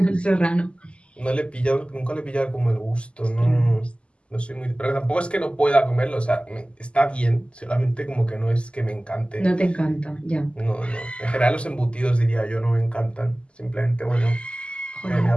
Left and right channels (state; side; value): late; right; 0.054 ms